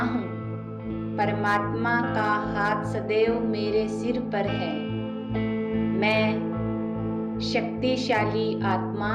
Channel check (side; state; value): both; identical; correlation 1.00